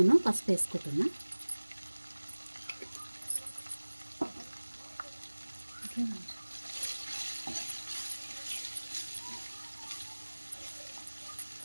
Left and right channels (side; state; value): both; inverted; correlation -1.00